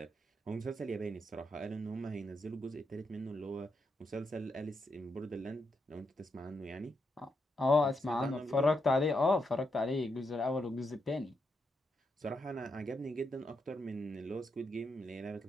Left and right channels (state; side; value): normal; both; correlation 0.82